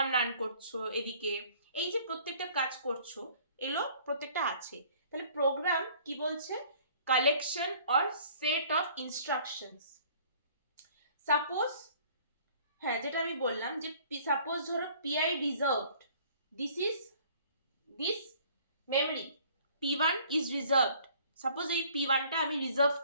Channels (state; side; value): inverted; both; correlation -0.55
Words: রান করছো, এদিকে এই যে প্রত্যেকটা কাজ করছো এগুলো প্রত্যেকটা আছে। তাহলে প্রোগ্রাম কি বলছে? Collection or set of instructions. Suppose, হ্যাঁ যেটা আমি বললাম যে সাপোজ ধরো PI reserved, this memory P1 is reserved. Suppose এই P1টা আমি রিজার্ভ